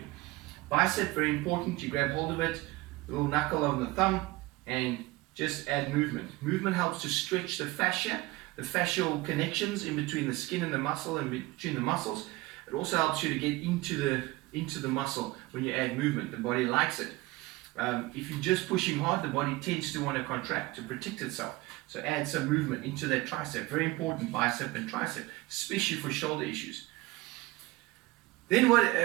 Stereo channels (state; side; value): quieter; left; 20.3 dB